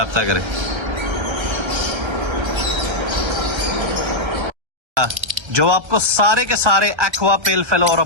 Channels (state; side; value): late; left; 1.3 ms